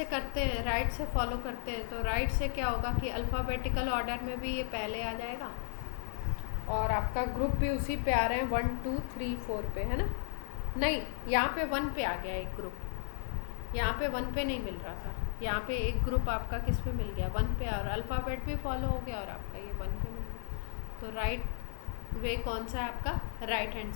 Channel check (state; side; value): silent; right; 55 dB below the other